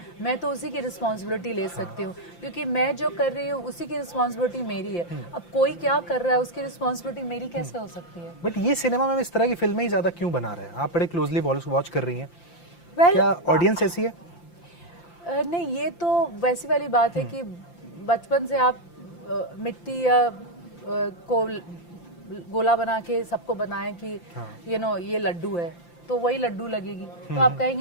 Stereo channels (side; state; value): right; late; 5.8 ms